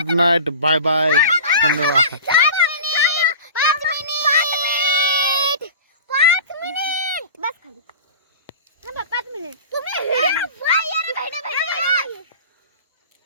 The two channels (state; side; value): inverted; both; correlation -0.36